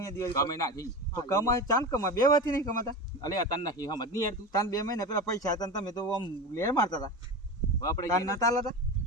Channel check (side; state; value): both; normal; correlation 0.26